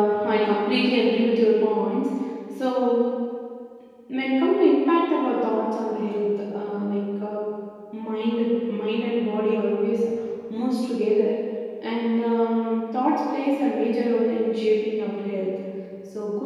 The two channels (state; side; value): identical; both; correlation 1.00